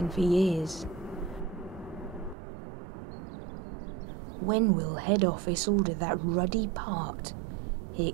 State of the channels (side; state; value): left; drops out; at 2.4 s